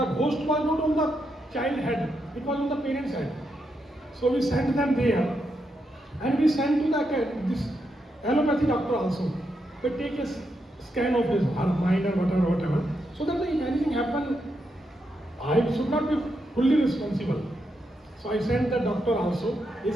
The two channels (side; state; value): both; normal; correlation 0.82